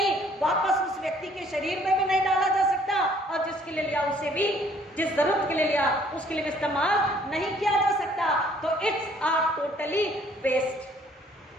वापस उस व्यक्ति के शरीर में भी नहीं डाला जा सकता, और जिसके लिए लिया उसे भी, जिस जरूरत के लिए लिया उसके लिए इस्तेमाल नहीं किया जा सकता। तो इट्स आ टोटली वेस्ट,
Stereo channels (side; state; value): both; normal; correlation 0.60